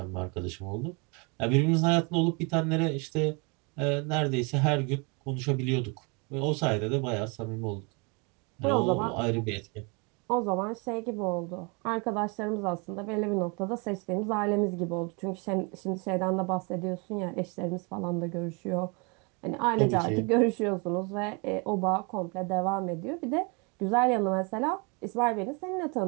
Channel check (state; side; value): quieter; left; 31.5 dB